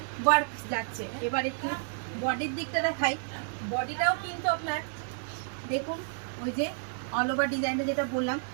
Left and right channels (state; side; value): silent; left; 57 dB below the other